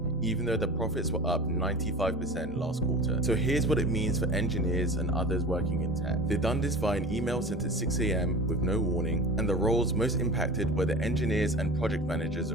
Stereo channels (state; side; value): normal; both; correlation 0.35